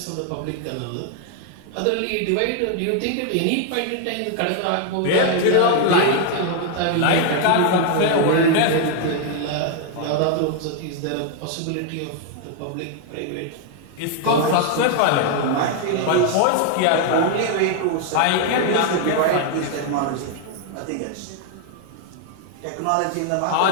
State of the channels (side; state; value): both; different; correlation 0.00